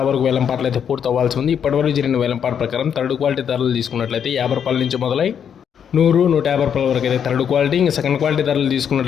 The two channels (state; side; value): quieter; right; 8.1 dB